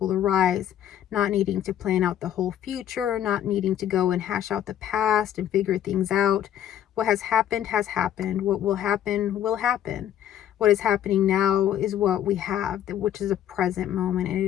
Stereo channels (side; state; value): right; quieter; 10.9 dB